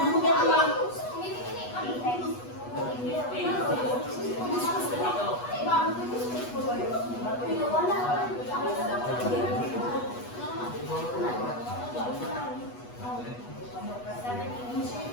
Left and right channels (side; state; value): right; late; 8.2 ms